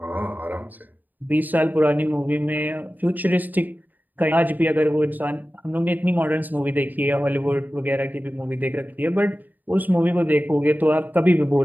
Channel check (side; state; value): left; late; 0.086 ms